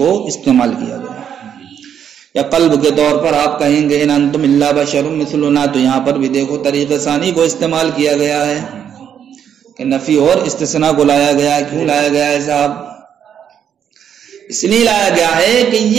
استعمال کیا گیا. یا قلب کے طور پر آپ کہیں گے ان انتم الا بشر مثلنا، تو یہاں پر بھی دیکھو طریقہ ثانی کو استعمال کیا گیا ہے کہ نفی اور استثناء کو لایا گیا ہے. کیوں لایا گیا ہے صاحب؟ اس لیے لایا گیا ہے کہ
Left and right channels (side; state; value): left; quieter; 8.7 dB